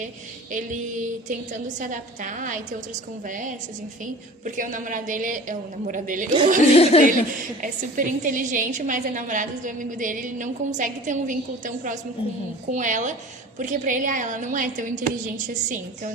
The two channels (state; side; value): normal; both; correlation 0.41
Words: ele tentando se adaptar e ter outras conversas, enfim. Porque o amigo dele é super inteligente, mas a namorada do amigo dele, ele não consegue ter um vínculo tão próximo com ela, porque pra ele, ela não é tão inteligente assim. Então eu